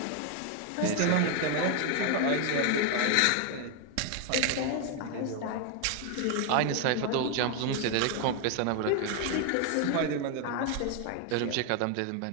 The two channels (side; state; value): both; different; correlation 0.01